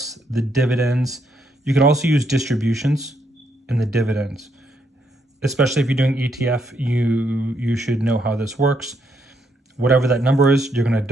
the dividends. You can also use distributions in the dividends. Especially if you're doing ETF, you should know how this works. Whatever that number is, you're going to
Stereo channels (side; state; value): both; normal; correlation 0.75